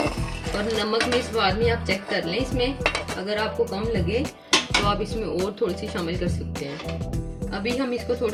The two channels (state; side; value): identical; both; correlation 1.00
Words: और नमक में इस बार में आप चेक कर लें, इसमें अगर आपको कम लगे तो आप इसमें और थोड़ी सी शामिल कर सकते हैं। अभी हम इसको